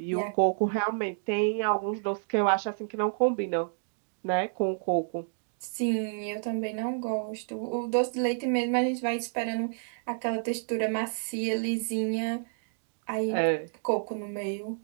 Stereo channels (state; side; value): silent; left; digital silence